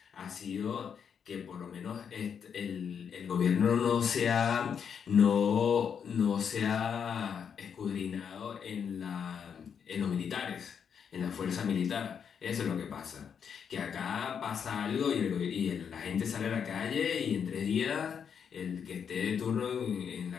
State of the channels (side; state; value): right; quieter; 7.3 dB